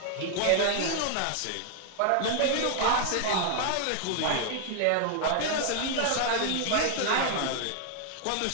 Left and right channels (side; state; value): both; different; correlation 0.00